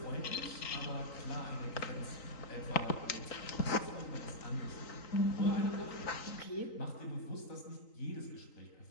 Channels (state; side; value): late; right; 3.9 ms